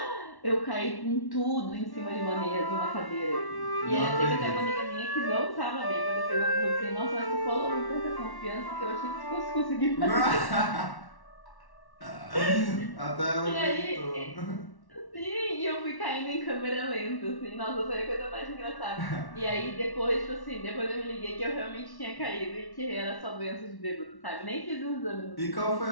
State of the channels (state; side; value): late; right; 1.1 ms